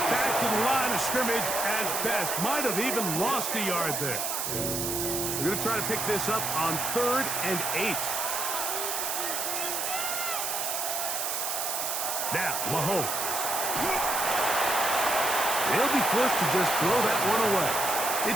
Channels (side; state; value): right; noise; hiss, 1 dB below the sound